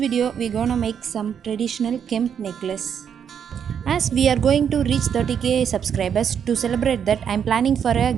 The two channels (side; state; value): left; quieter; 8.0 dB